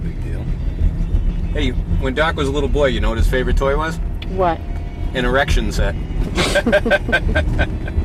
deal. Hey, when Doc was a little boy, you know what his favorite toy was? What? An erection set.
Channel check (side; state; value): both; identical; correlation 1.00